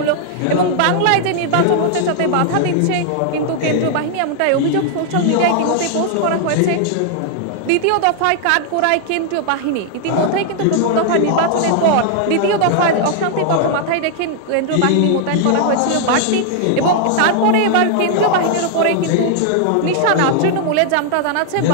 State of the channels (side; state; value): both; different; correlation 0.00